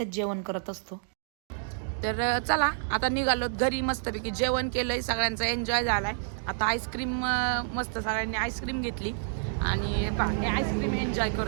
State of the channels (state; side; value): silent; left; digital silence